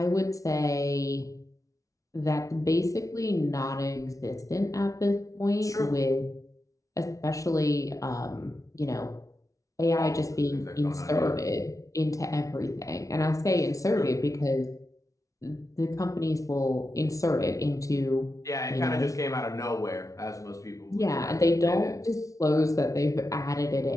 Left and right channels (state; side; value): late; right; 0.16 ms